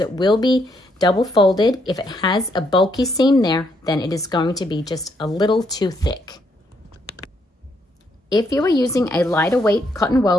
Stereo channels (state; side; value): normal; both; correlation 0.74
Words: it will be double folded. If it has a bulky seam there, then it is going to be just a little too thick. If you are using a lighter weight cotton